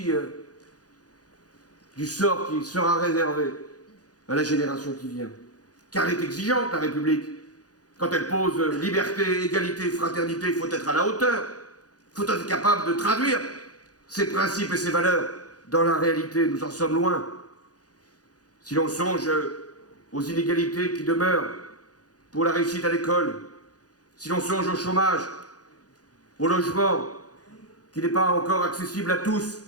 du sort qui sera réservé à la génération qui vient. Car elle est exigeante, la République. Quand elle pose liberté, égalité, fraternité, il faut être à la hauteur. Il faut être capable de traduire ces principes et ces valeurs dans la réalité. Nous en sommes loin. Si l'on songe aux inégalités qui demeurent pour la réussite à l'école, si l'on songe au chômage, au logement, qui n'est pas encore accessible à tous,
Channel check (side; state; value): right; late; 0.68 ms